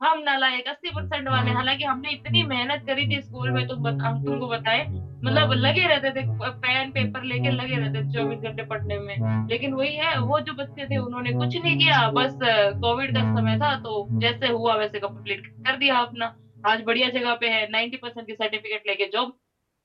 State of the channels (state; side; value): identical; both; correlation 1.00